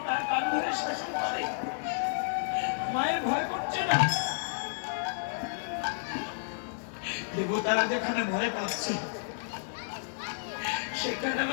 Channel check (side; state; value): right; silent; 57 dB below the other